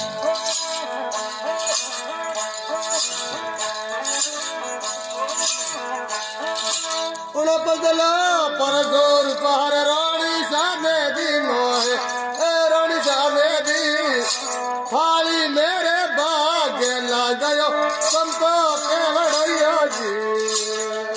बदला पर जोर पहाड़ रानी साने दिन रानी साने दिन थाली मेरे बाग लग गयो संतो के बड़ैया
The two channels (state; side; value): identical; both; correlation 1.00